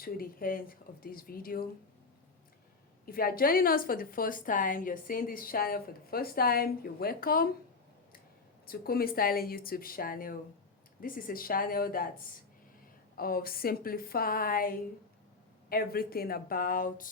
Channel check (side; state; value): right; quieter; 4.2 dB